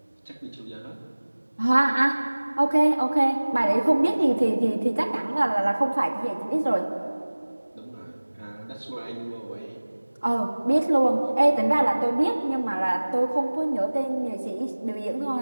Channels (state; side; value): inverted; both; correlation -1.00